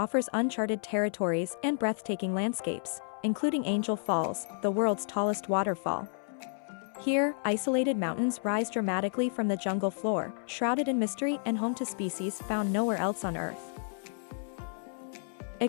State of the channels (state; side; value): silent; right; 57 dB below the other